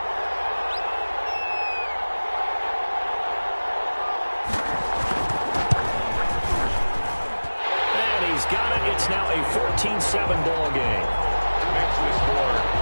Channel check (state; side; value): inverted; both; correlation -1.00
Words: And he's got it. It's now a 14-7 ball game. Makes the score